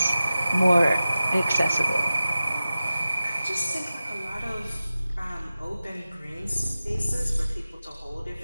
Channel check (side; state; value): both; inverted; correlation -0.95